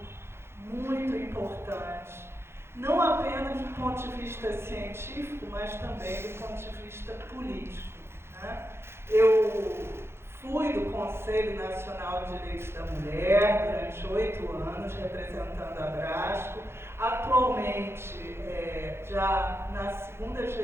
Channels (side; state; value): left; late; 0.12 ms